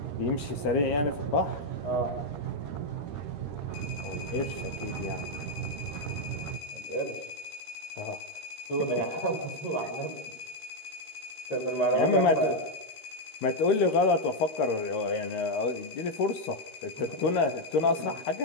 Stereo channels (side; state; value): right; late; 13 ms